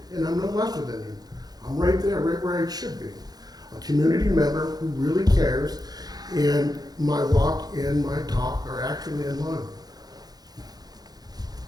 and I'm no lesser than you. I'm right there, right where I should be. A community member who really cares, and my walk and my talk are actually in line.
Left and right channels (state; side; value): late; left; 0.19 ms